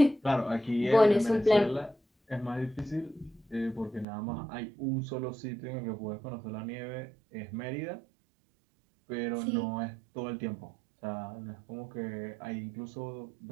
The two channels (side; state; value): left; drops out; at 4.0 s